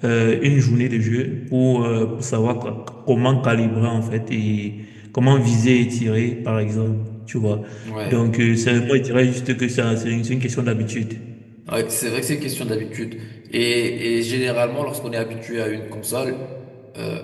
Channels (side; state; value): both; identical; correlation 1.00